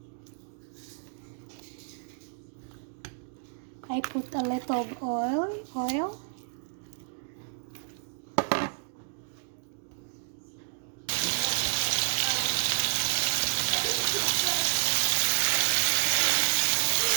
I put a little of oil.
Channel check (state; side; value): silent; left; digital silence